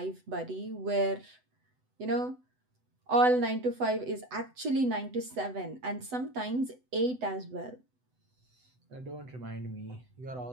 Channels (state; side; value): late; left; 8.0 ms